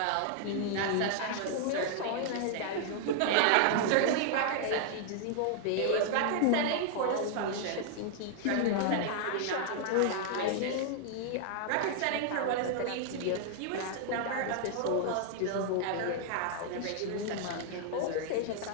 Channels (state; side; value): different; both; correlation 0.00